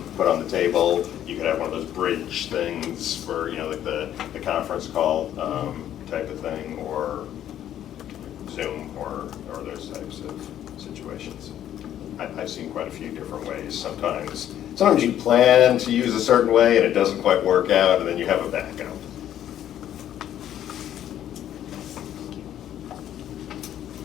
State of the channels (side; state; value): right; quieter; 11.1 dB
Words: put on the table. You could have one of those bridge things for like the conference call type of thing, or Zoom or those types of situations. I've seen quite a few different ways. Sometimes you plan to use a certain way and it doesn't quite work out, and then you have a backup.